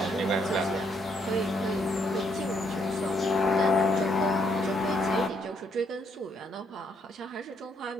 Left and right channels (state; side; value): normal; both; correlation 0.72